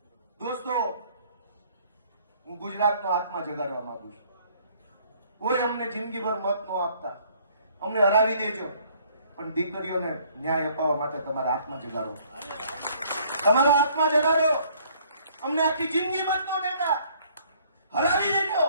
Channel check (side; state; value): both; inverted; correlation -0.61